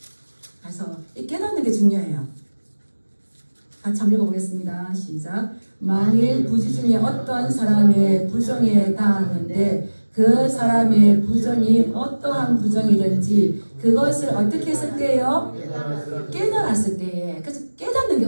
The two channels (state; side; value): inverted; both; correlation -1.00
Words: 그래서 이 깨닫는 게 중요해요. 같이 한번 읽어보겠습니다. 시작. 만일 부지 중에 어떤 사람의 부정에 당하는데 그 사람의 부정이 어떠한 부정이든지 그것을 어떻게 했을 때요? 깨달았을 때에. 그래서 깨닫는 게